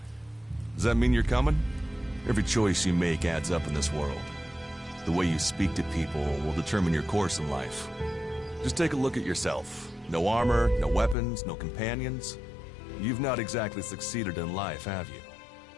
Does that mean you're coming? Every choice you make adds up in this world. The way you speak to people will determine your course in life. Just take a look at yourself. No armor, no weapons, no companions. You've not exactly succeeded in life, have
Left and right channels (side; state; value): right; drops out; at 11.2 s